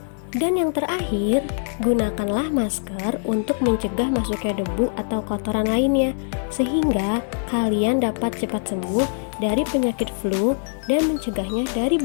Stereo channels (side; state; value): right; silent; digital silence